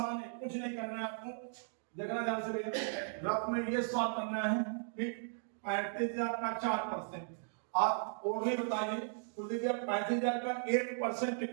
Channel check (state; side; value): silent; left; digital silence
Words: है, कुछ नहीं करना है आपको, देखना ध्यान से रफ में ये सॉल्व करना है, ठीक। 35,000 का 4%, आप और भी बताइए, तो देखिए 35,000 का 1%